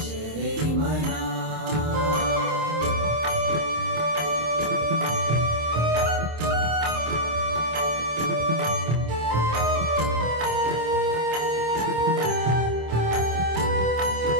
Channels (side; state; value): left; late; 26 ms